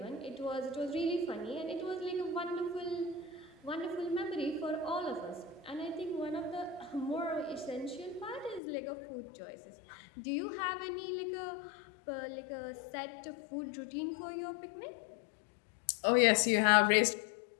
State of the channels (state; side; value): drops out; right; at 8.6 s